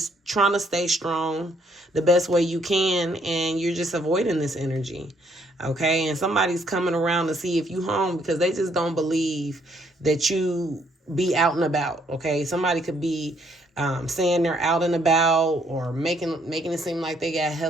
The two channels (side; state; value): both; normal; correlation 0.69